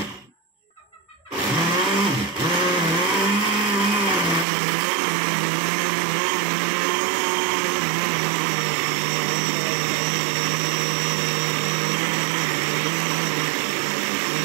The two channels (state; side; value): drops out; left; at 4.5 s